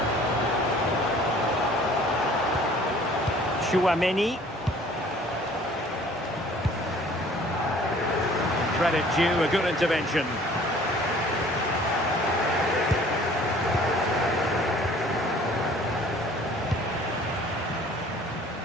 Chouameni. Credit due, a good intervention.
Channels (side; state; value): both; normal; correlation 0.52